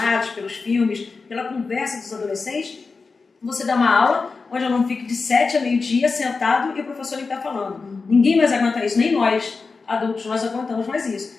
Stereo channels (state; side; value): quieter; right; 4.4 dB